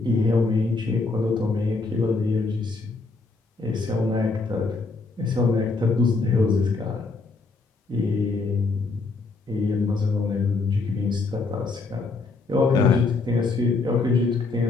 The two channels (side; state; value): right; quieter; 3.8 dB